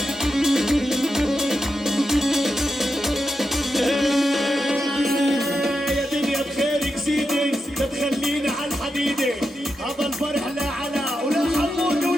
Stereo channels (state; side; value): normal; both; correlation 0.87